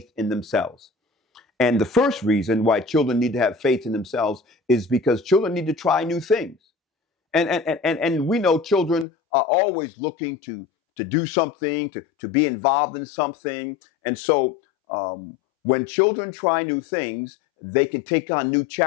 in themselves. And the first reason why children need to have faith in themselves is because children need to try new things. And we know children are always looking to do something, to be involved in something. And so when children try new things, they can take on new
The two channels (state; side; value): drops out; right; at 9.1 s